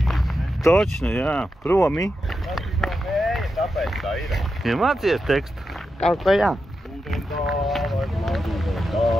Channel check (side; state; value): both; normal; correlation 0.88